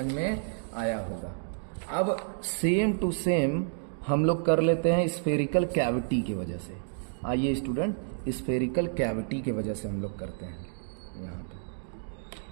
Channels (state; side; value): silent; left; digital silence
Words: में आया होगा। अब सेम टू सेम हम लोग कर लेते हैं स्फेरिकल कैविटी की वजह से। आइए स्टूडेंट, स्फेरिकल कैविटी की वजह से हम लोग करते हैं यहाँ पे।